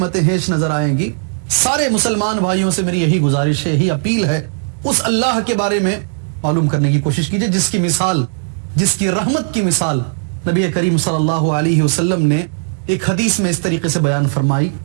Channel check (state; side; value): silent; left; digital silence